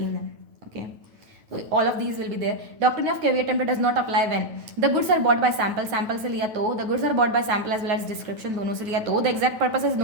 है, okay. So all of these will be there. Doctrine of caveat emptor does not apply when the goods are bought by sample से लिया तो, the goods are bought by sample as well as description दोनों से लिया तो, the exact purpose is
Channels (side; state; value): left; late; 9.1 ms